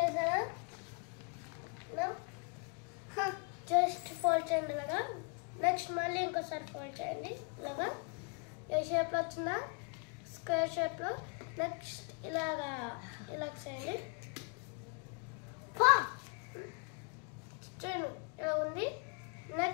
జస్ట్ ఫోల్డ్ చేయండి ఇలాగా. నెక్స్ట్ మళ్ళీ ఇంకోసారి ఫోల్డ్ చేయండి ఇలాగా. ఏ షేప్లో వచ్చిందా, స్క్వేర్ షేప్లో. నెక్స్ట్ ఇలాగా చేయండి. చూడండి ఇలా ఉంది.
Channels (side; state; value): right; quieter; 35.7 dB